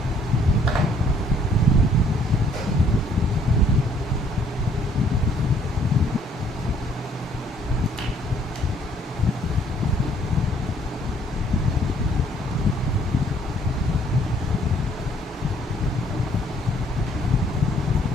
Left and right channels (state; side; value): normal; both; correlation 0.62